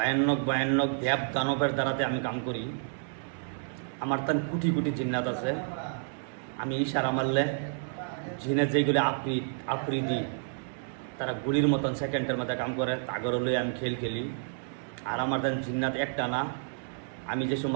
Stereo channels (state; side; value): silent; left; digital silence